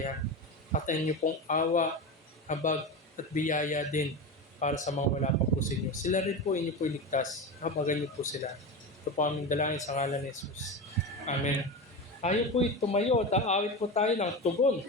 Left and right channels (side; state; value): both; normal; correlation 0.23